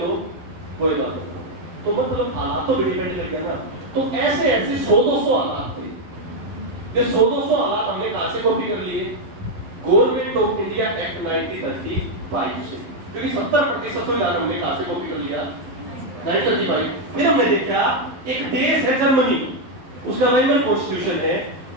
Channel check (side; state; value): left; late; 11 ms